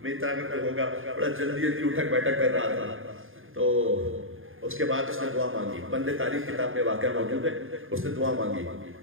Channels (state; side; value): late; left; 0.59 ms